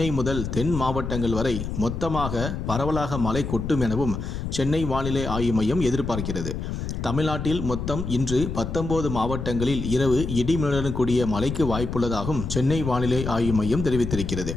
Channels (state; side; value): noise; left; rumble, 5 dB below the sound